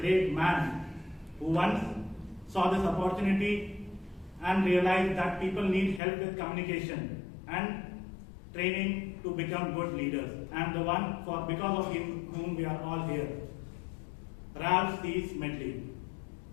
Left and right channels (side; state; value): right; drops out; at 6.0 s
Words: man who once saw this opportunity and realized that people need help with communication and training to become good leaders, and the one because of whom we are all here, Ralph C. Smedley.